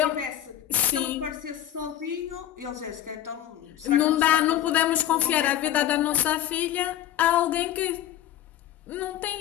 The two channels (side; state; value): right; quieter; 11.8 dB